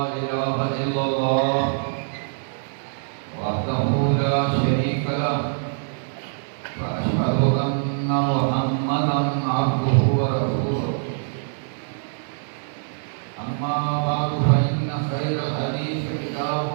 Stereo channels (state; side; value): silent; left; 57 dB below the other